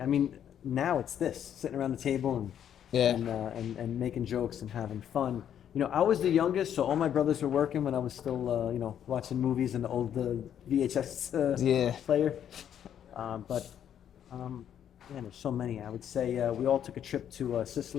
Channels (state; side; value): quieter; right; 9.6 dB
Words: I mean, now it's this, sitting around the table and making jokes and having fun. I was the youngest, so all my brothers were working when I was still, watching movies in the old VHS player. Man, there's so many. I would say we all took a trip to